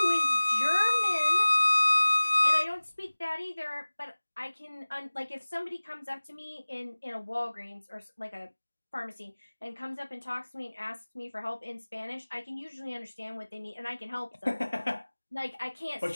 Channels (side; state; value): both; inverted; correlation -1.00